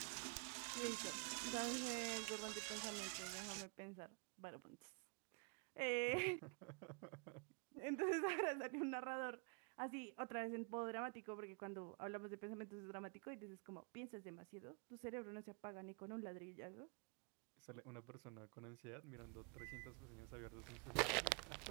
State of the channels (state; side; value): quieter; left; 36.2 dB